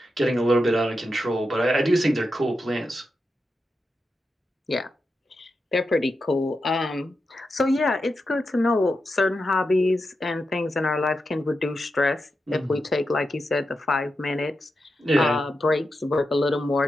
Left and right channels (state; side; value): normal; both; correlation 0.88